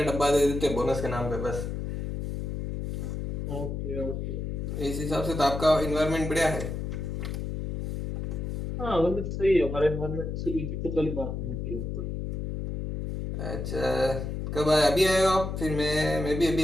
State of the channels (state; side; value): noise; left; hum, 4 dB below the sound